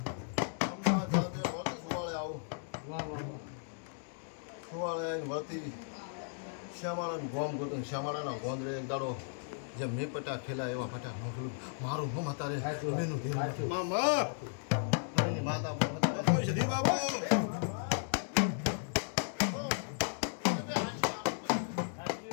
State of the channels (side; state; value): right; silent; digital silence